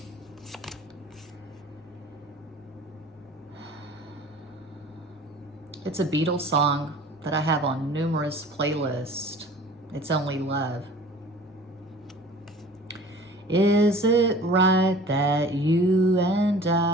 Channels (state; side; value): normal; both; correlation 0.44